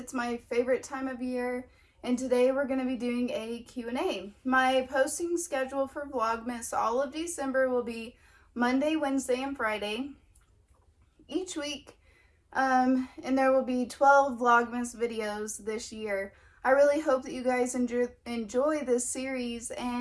my favorite time of year, and today we're going to be doing a Q&A. My posting schedule for Vlogmas all of December will be Monday, Wednesday, and Friday each week, and there will be 12 Vlogmas videos this year. I really hope that you guys enjoy this series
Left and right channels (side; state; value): both; identical; correlation 1.00